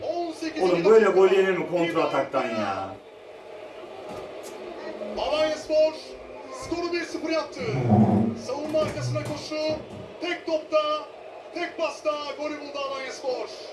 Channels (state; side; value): identical; both; correlation 1.00